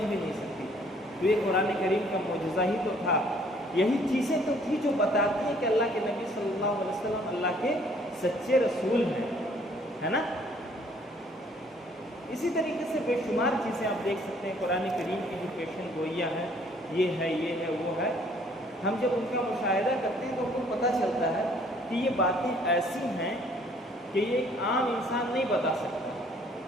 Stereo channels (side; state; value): both; normal; correlation 0.60